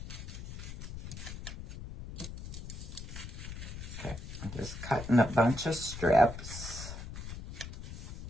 Okay, I'll just cutting a bunch of strips.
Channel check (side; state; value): left; noise; rumble, 9 dB below the sound